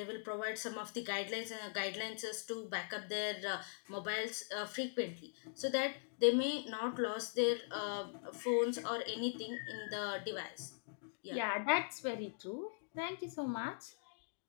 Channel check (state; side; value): silent; right; digital silence